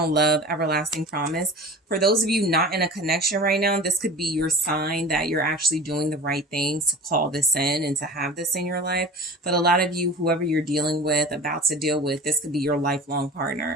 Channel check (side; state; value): both; normal; correlation 0.36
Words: love, everlasting promise. For those of you not in a connection right now, this could be your sign that you're actually doing the right things to call this in and to have this in your life. But a lot of you, whoever you're dealing with, about to deal with, this could be your lifelong